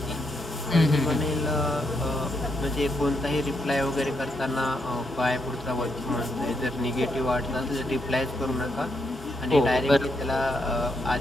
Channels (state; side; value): normal; both; correlation 0.79